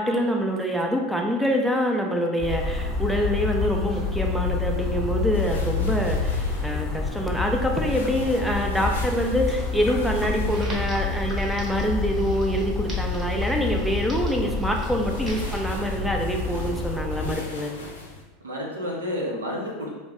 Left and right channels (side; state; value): both; normal; correlation 0.53